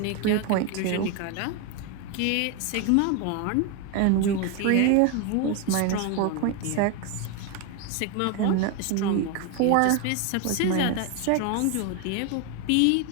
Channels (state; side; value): different; both; correlation 0.02